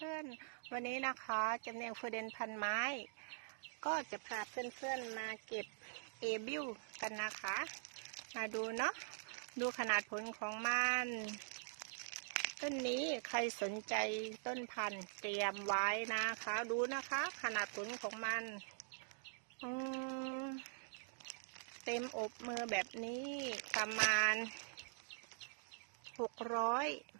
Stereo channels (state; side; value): silent; left; digital silence